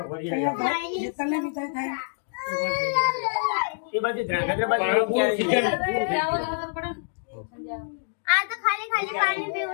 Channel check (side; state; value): right; silent; digital silence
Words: એ બાજુ ધ્રાંગધ્રા બાજુ આ તો ખાલી ખાલી પાણી